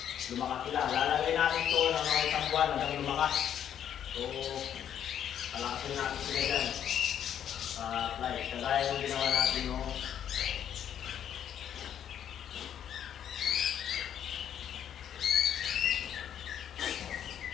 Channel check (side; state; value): right; quieter; 9.6 dB